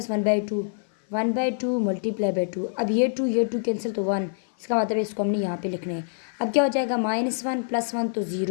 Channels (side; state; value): right; silent; 57 dB below the other